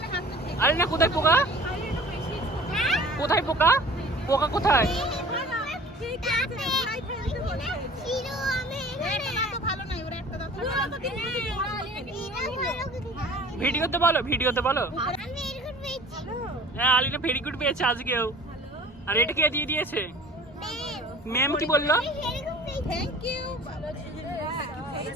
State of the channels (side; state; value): both; normal; correlation 0.45